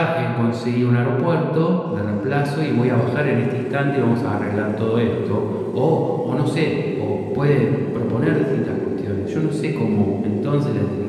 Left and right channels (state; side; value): identical; both; correlation 1.00